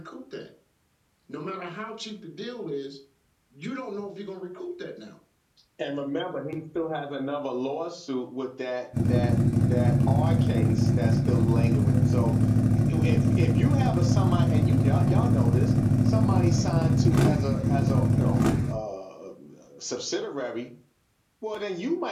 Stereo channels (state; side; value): identical; both; correlation 1.00